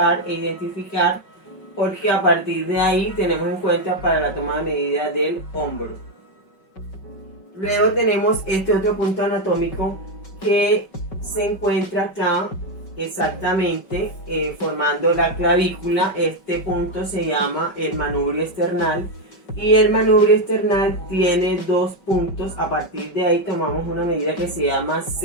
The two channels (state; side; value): late; right; 5.3 ms